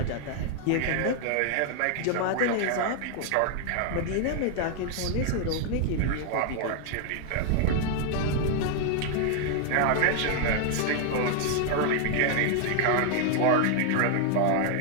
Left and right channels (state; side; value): different; both; correlation 0.00